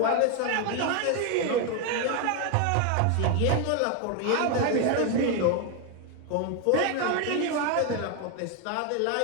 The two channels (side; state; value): both; different; correlation 0.01